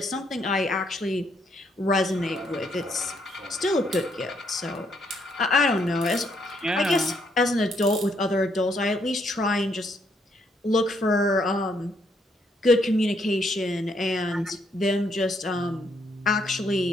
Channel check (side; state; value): both; normal; correlation 0.72